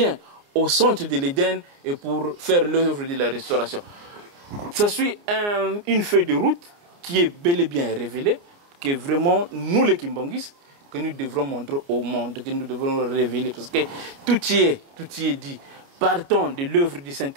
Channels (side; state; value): left; late; 29 ms